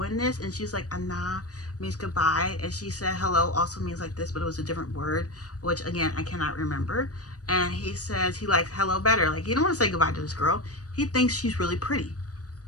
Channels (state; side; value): late; right; 0.67 ms